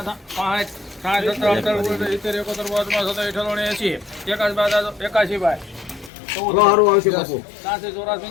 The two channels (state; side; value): drops out; right; at 6.1 s